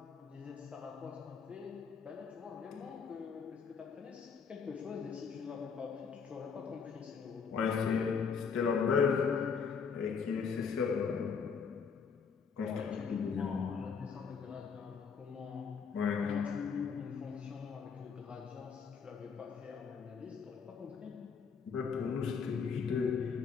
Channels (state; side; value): quieter; right; 6.0 dB